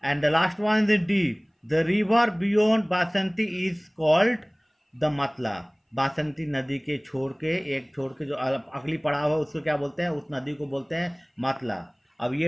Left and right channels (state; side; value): identical; both; correlation 1.00